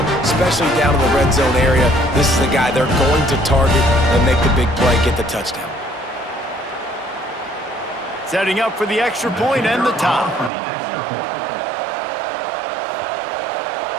especially down in the red zone area. This is the guy they're going to target and make the big play, get the touchdown. Setting up for the extra point and the top.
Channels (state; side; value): drops out; left; at 10.5 s